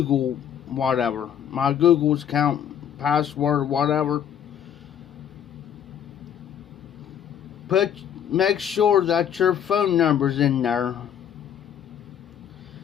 whatever, my Google account password whatever. Make sure that your phone number's in there.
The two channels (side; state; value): right; quieter; 9.1 dB